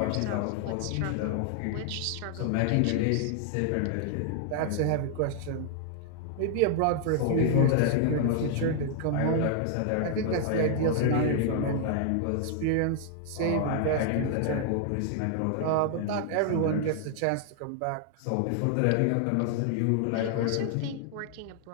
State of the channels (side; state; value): both; different; correlation 0.00